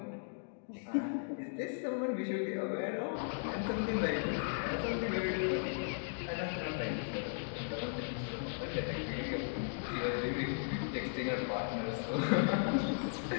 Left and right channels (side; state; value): right; silent; digital silence